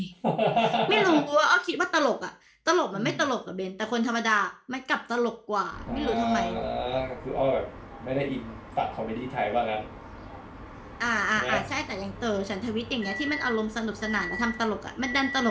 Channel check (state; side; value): identical; both; correlation 1.00